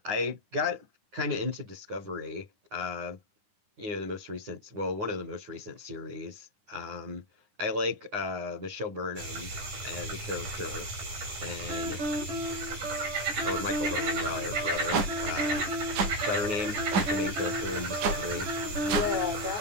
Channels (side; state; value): left; late; 9.8 ms